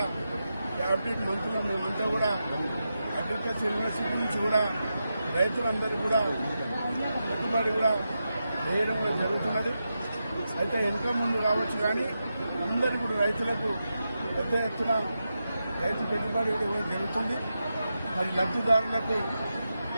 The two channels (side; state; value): both; inverted; correlation -0.89